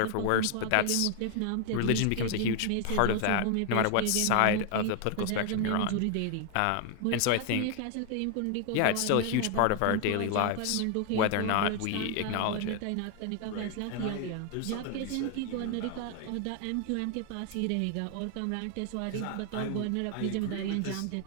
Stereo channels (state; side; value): different; both; correlation 0.00